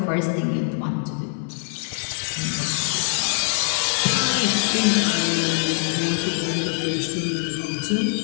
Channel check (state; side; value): silent; right; digital silence